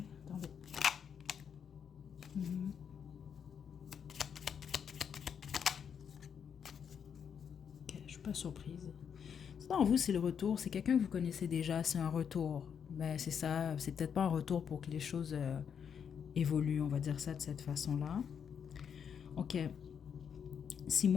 Attendez. Ok, je suis pas surprise. Non, vous, c'est le retour. C'est quelqu'un que vous connaissez déjà. C'est un retour. Ben, c'est ça. C'est peut-être pas un retour pour que les choses évoluent. On va dire ça de cette façon-là. Ok. Si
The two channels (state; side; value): quieter; right; 7.5 dB